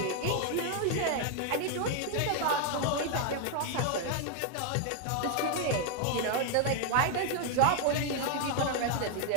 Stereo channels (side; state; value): both; different; correlation 0.00